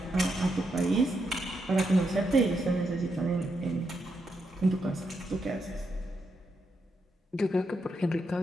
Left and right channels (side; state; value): both; normal; correlation 0.82